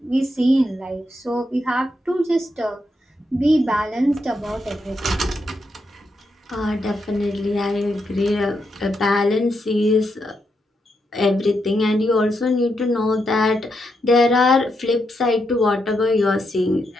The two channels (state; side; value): normal; both; correlation 0.82